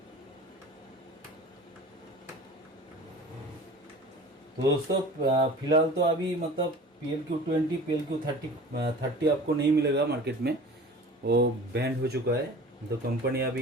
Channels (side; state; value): both; normal; correlation 0.41